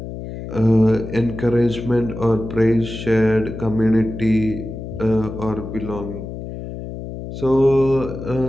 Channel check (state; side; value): noise; left; hum, 9 dB below the sound